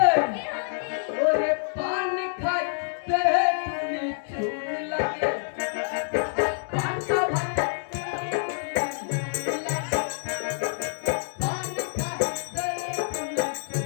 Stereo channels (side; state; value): right; silent; digital silence